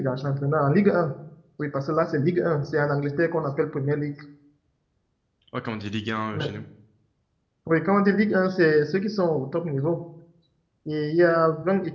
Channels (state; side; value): identical; both; correlation 1.00